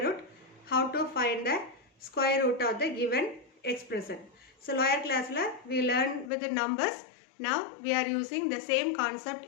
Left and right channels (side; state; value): right; drops out; at 6.3 s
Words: root, how to find the square root of the given expression. So lower class we learned with the numbers, now we are using the same